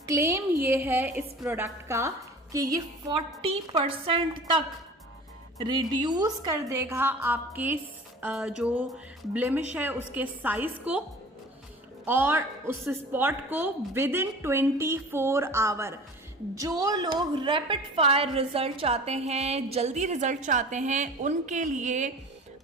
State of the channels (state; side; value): normal; both; correlation 0.41